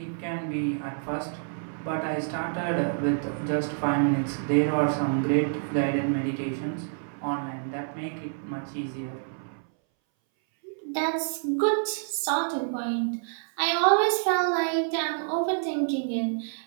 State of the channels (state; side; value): silent; left; 60 dB below the other